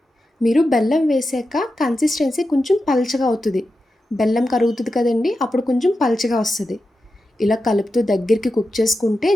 మీరు బెల్లం వేసాక కన్సిస్టెన్సీ కొంచెం పల్చగా అవుతుంది. బెల్లం కరుగుతుంది కదండీ! అప్పుడు కొంచెం పల్చగా వస్తది. ఇలా కలుపుతూ దగ్గరికి కుక్ చేసుకుంటే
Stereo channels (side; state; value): both; normal; correlation 0.90